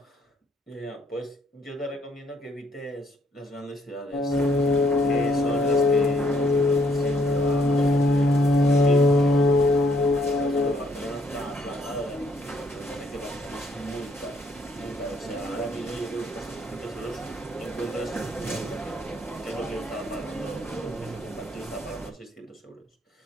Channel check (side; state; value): both; normal; correlation 0.68